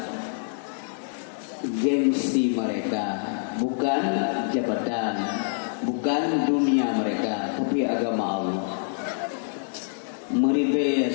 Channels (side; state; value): right; silent; digital silence